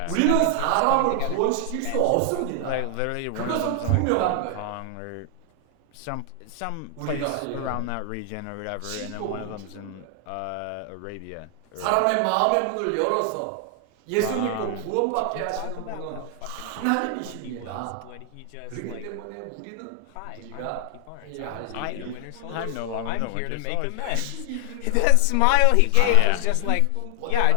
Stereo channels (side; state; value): both; different; correlation 0.00